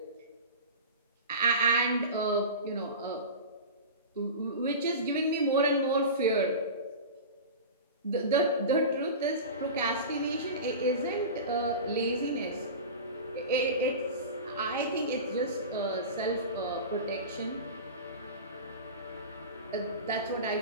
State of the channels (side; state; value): both; inverted; correlation -0.30